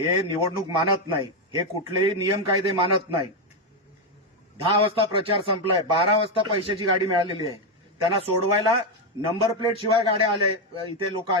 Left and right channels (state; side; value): normal; both; correlation 0.06